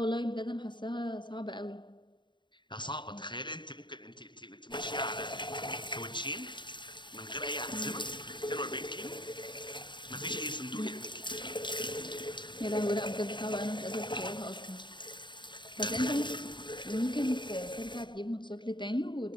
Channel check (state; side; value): late; right; 0.23 ms